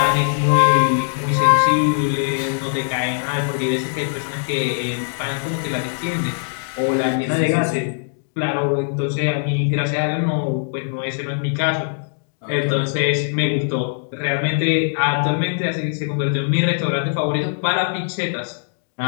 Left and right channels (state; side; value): silent; right; digital silence